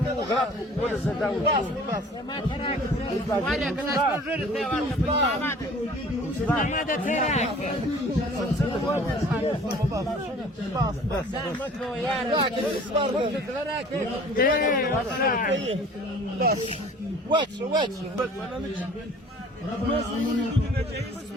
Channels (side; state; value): both; normal; correlation 0.48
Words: وغرق ولا زداو ولا كنا نجرب ماذا تراك بس واتش